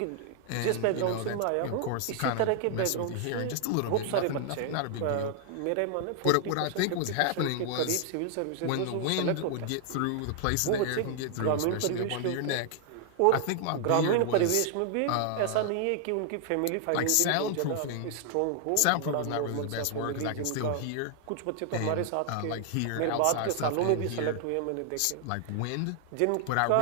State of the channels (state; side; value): different; both; correlation 0.00